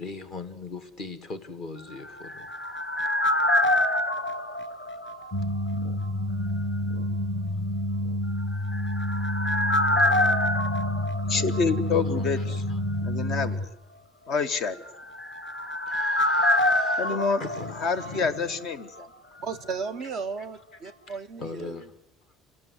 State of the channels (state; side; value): normal; both; correlation 0.37